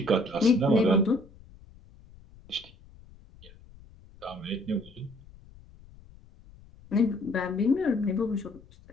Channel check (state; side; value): noise; left; rumble, 23 dB below the sound